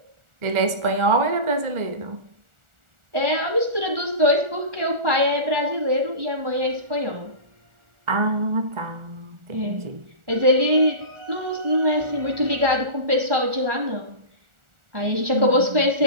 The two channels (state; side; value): late; left; 1.4 ms